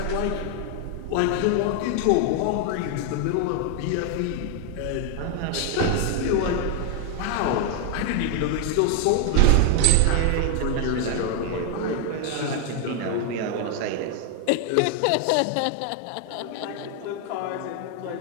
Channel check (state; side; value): different; both; correlation 0.00